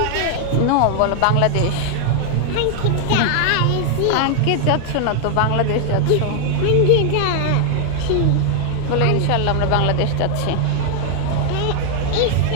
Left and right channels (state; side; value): different; both; correlation 0.00